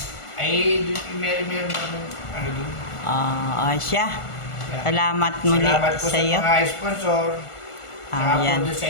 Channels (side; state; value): right; late; 1.5 ms